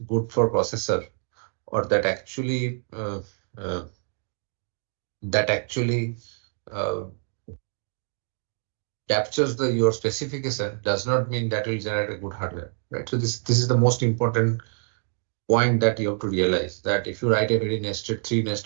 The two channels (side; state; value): left; silent; 56 dB below the other